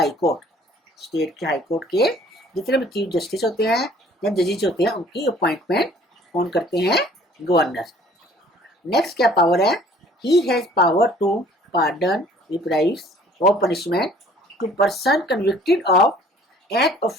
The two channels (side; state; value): both; normal; correlation 0.54